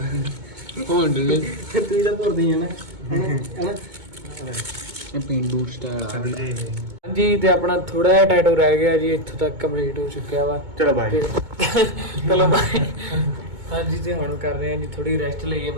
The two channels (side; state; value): left; late; 2.2 ms